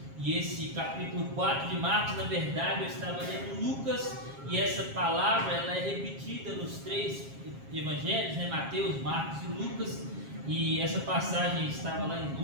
e esse capítulo 4 de Marcos, na verdade eu estava lendo Lucas, e essa palavra ela é repetida nos 3 evangelhos, né? Mateus, Marcos e Lucas, e essa passagem estava lá em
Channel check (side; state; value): left; late; 7.4 ms